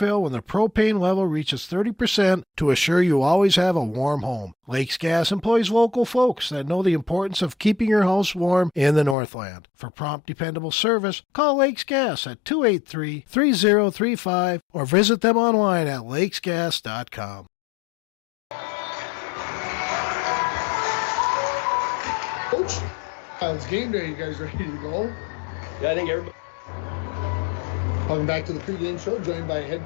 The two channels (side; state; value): right; drops out; at 9.2 s